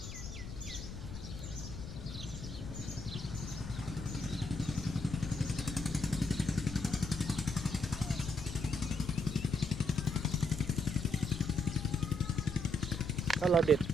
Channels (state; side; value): noise; left; rumble, 9 dB below the sound